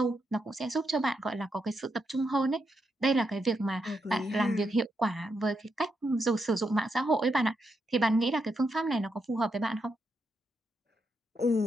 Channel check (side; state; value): both; normal; correlation 0.82